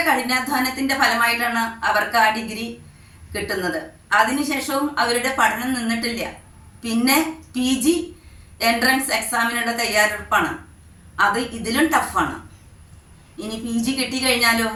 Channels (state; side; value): identical; both; correlation 1.00